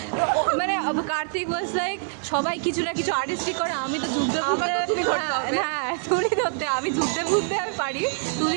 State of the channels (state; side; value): silent; left; 62 dB below the other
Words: মানে কার্তিক ওয়াজ লাইক সবাই কিছু না কিছু আর্টিস্টিক করে, আমি তো যুদ্ধে ফুদ্ধে, হ্যাঁ তুলি ধরতে আমি যুদ্ধে ফুদ্ধে আমি পারি,